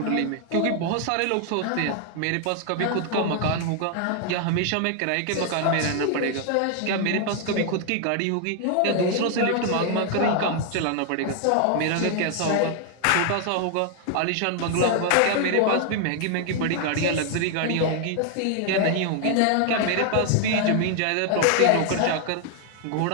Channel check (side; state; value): both; different; correlation 0.00